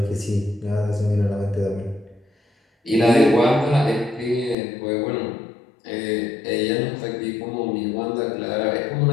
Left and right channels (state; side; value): drops out; right; at 4.5 s